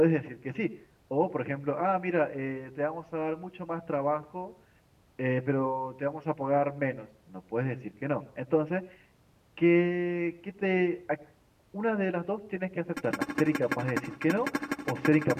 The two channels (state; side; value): identical; both; correlation 1.00